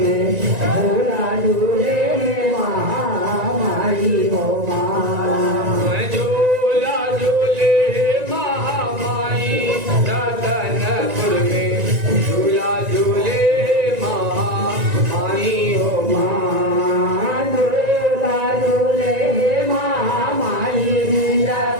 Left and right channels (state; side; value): late; left; 1.9 ms